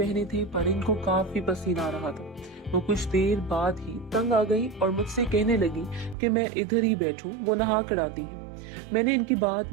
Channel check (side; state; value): left; drops out; at 6.2 s